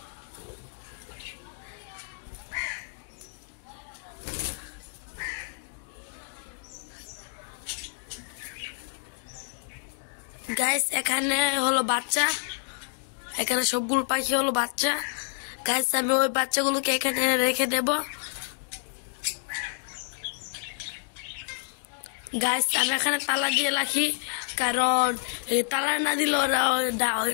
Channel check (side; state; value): right; silent; digital silence